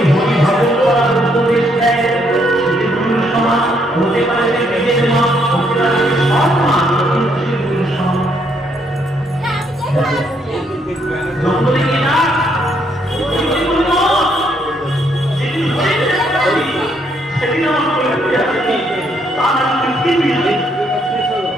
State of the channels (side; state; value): both; normal; correlation 0.72